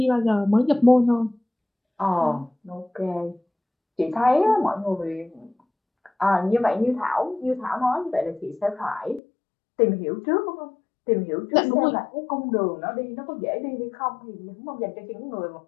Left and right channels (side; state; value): right; drops out; at 9.2 s